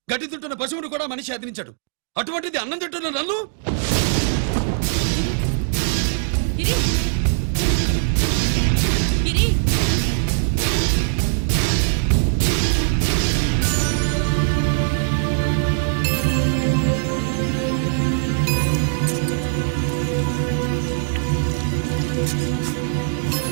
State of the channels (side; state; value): left; silent; digital silence